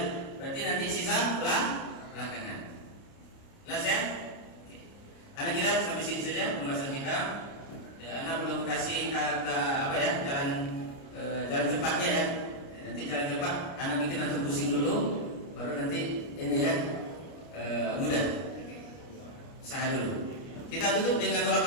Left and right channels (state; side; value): late; right; 29 ms